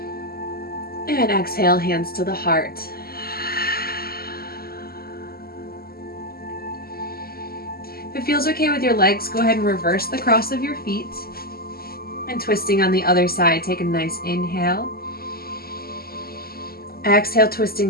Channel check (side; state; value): right; late; 0.44 ms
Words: And exhale, hands to the heart. If it feels okay with your legs, go ahead and reverse the cross of your feet. And twisting on the other side, take a nice inhale. Exhale,